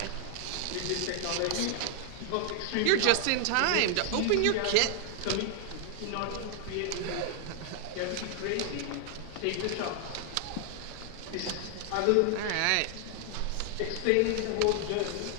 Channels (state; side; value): different; both; correlation 0.00